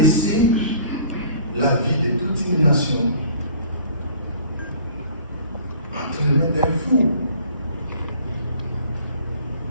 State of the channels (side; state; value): both; inverted; correlation -0.51